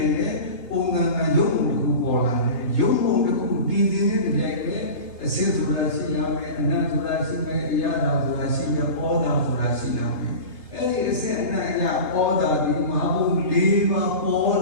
Unga Yomu Bola, Yomu the Ku did in the Jane, a sense of Rasilame, and not to Rasime, Yada to Rasime, Oda to Rasilame. Any essay and Oda, the Mabu liva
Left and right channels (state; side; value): late; right; 3.3 ms